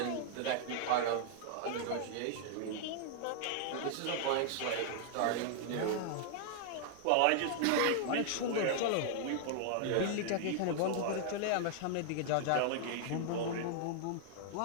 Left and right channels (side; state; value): both; different; correlation -0.01